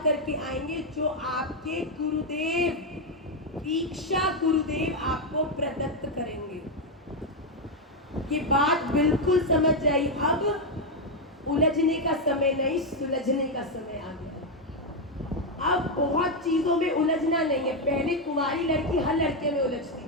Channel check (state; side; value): normal; both; correlation 0.04